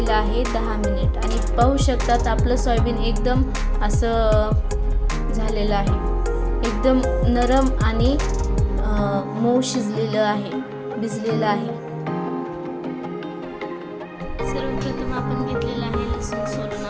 आहे 10 मिनिट। आणि पाहू शकतात आपलं सोयाबीन एकदम असं झालेलं आहे, एकदम नरम आणि मऊ शिजलेलं आहे, भिजलेलं आहे। सर्वप्रथम आपण घेतलेला आहे लसूण सोलून।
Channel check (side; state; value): both; identical; correlation 1.00